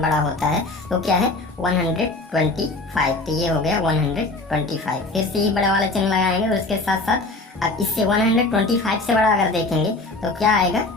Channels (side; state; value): right; quieter; 3.2 dB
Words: बड़ा होता है वो क्या है? 125। तो ये हो गया 125। फिर से ही बड़ा वाला चिन्ह लगाएंगे और उसके साथ साथ अब इससे 125 से बड़ा अगर देखेंगे तो क्या आएगा?